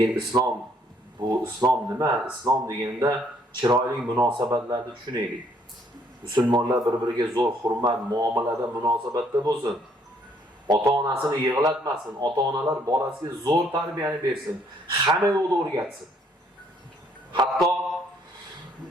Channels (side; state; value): both; normal; correlation 0.66